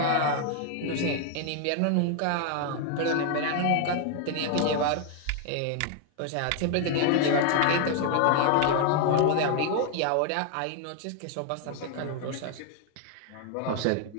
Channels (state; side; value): different; both; correlation 0.00